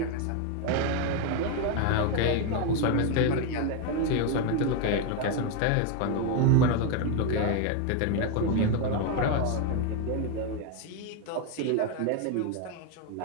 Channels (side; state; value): both; different; correlation 0.01